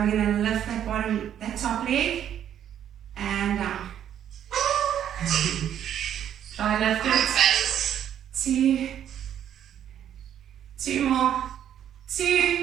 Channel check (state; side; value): quieter; left; 10.0 dB